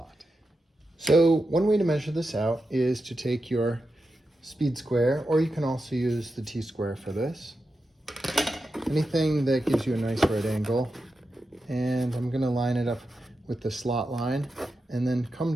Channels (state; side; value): normal; both; correlation 0.89